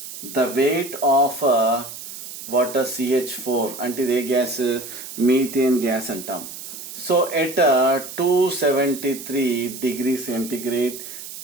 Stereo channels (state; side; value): noise; right; hiss, 11 dB below the sound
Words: weight of water CH4 అంటే ఇది ఏ గ్యాస్ మీథేన్ గ్యాస్ అంటాం. So at 273 degree centigrade